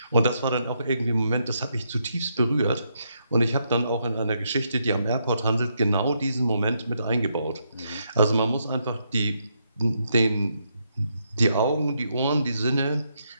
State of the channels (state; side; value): inverted; both; correlation -0.79